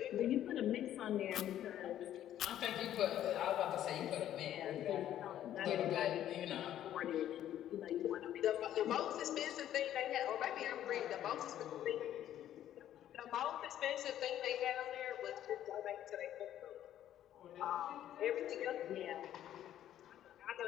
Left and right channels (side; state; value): right; quieter; 11.6 dB